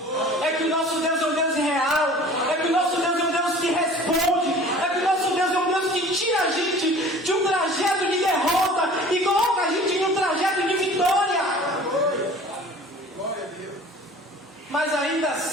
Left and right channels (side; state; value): both; normal; correlation 0.45